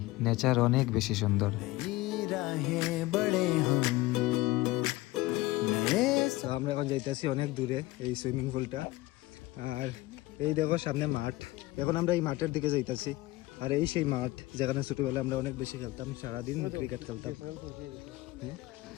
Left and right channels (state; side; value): quieter; right; 19.0 dB